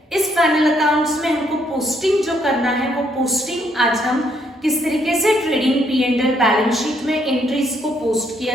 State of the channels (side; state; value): both; normal; correlation 0.71